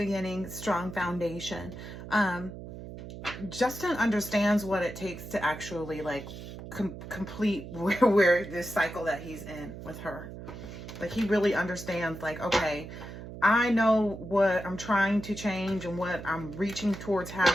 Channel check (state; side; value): noise; right; hum, 11 dB below the sound